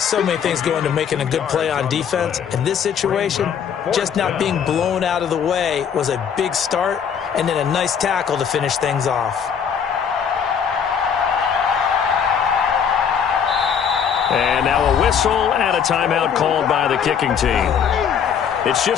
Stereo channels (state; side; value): quieter; right; 7.6 dB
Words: many things go into making a good play on defense. In this situation, just not being blown out of the way was a big start, and then a nice tackle to finish things off. And now a whistle and a timeout called by the kicking team. It's